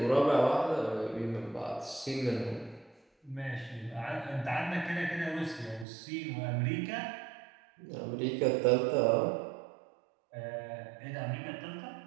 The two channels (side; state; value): left; drops out; at 5.9 s